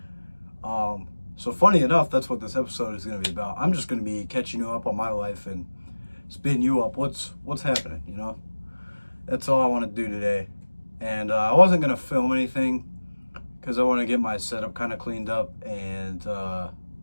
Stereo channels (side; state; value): both; inverted; correlation -1.00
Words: So funny enough, that's what this episode is gonna be about. I'm just gonna be catching you up on my life and spitting you up what's happening, you know? That's all I want to do today. And I wasn't gonna film anything because I want to get my setup kind of cleaned up, and I